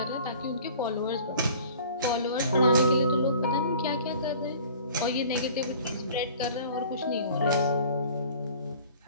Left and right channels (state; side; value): inverted; both; correlation -0.47